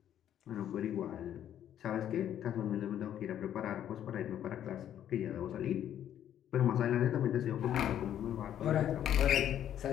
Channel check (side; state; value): right; quieter; 10.6 dB